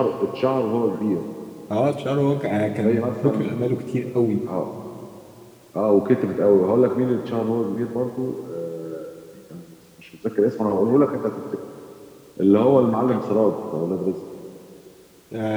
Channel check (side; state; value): both; identical; correlation 1.00